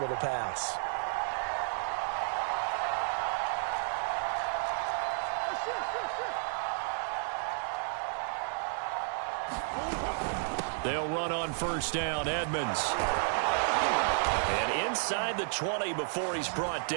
pass. They'll run on 1st down, Edmonds. And inside the 20 before he's brought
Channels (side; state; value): left; silent; digital silence